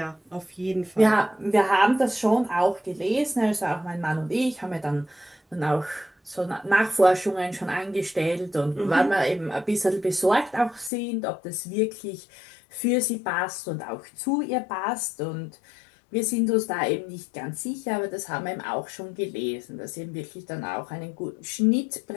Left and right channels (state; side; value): drops out; right; at 10.9 s